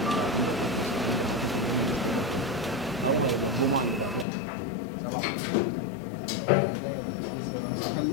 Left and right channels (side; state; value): right; drops out; at 4.2 s